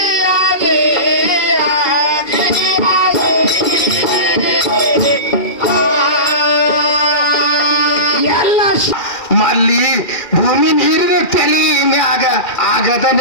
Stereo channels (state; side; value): late; right; 2.4 ms